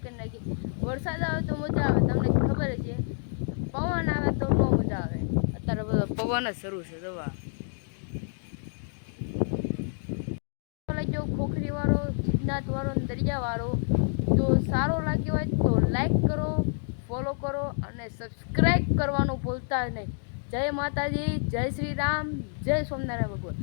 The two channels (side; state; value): right; silent; 59 dB below the other